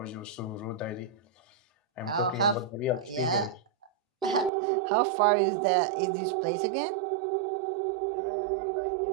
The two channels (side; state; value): left; drops out; at 4.5 s